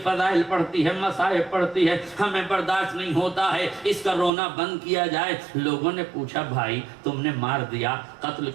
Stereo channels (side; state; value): left; drops out; at 4.3 s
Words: فضائل پڑھتی ہے, مصائب پڑھتی ہے, ہمیں برداشت نہیں ہوتا ہے, اس کا رونا بند کیا جائے. لوگوں نے پوچھا بھائی تم نے مار دیا, قتل